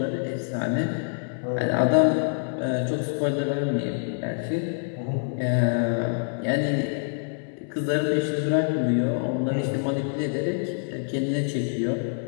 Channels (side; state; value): right; silent; 61 dB below the other